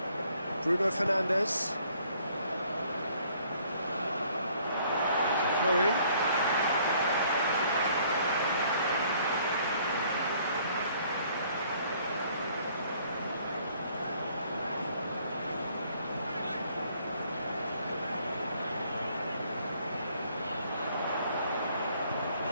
Bruno Fernandes. It's a throw-in.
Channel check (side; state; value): both; inverted; correlation -0.62